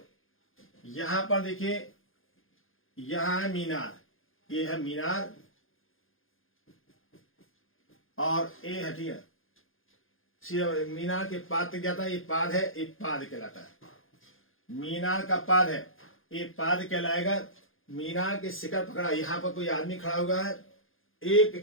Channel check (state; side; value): late; right; 0.60 ms